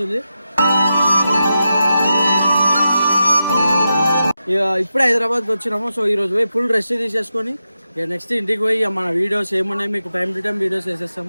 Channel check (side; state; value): both; inverted; correlation -0.89